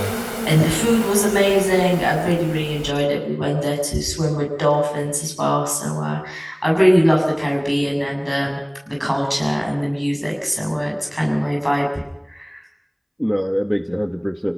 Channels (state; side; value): identical; both; correlation 1.00